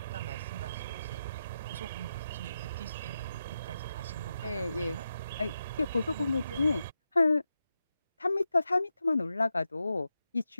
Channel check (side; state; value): both; inverted; correlation -0.88